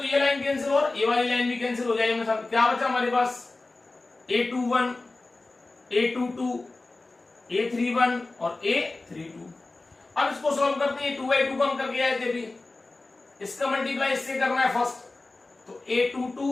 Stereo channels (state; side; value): quieter; right; 3.3 dB